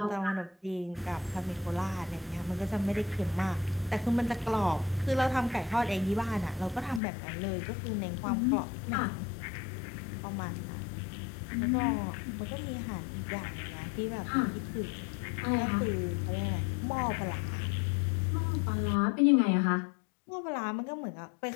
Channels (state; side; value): drops out; right; at 7.0 s